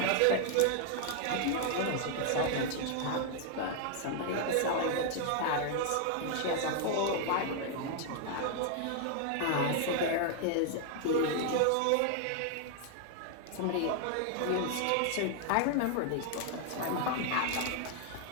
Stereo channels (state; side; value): different; both; correlation 0.00